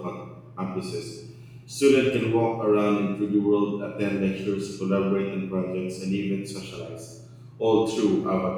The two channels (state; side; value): identical; both; correlation 1.00